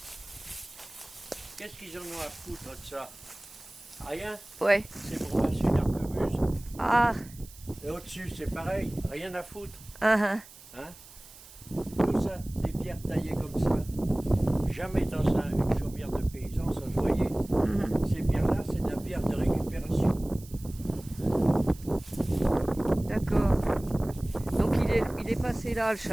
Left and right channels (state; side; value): noise; right; hiss, 20 dB below the sound